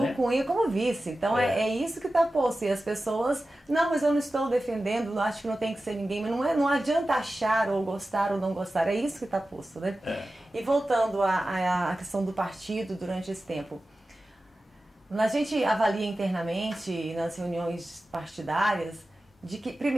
Cunha como vice. Então é isso que está posto. E as pessoas, não, mas eu não estou defendendo, acho que não tem que ser ninguém. Mas não adianta achar ou gostar ou não gostar. É isso que está posto, né? E voltando à questão do partido durante esse tempo. A gente avalia internamente, nas reuniões partidárias, de que,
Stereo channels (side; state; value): both; normal; correlation 0.94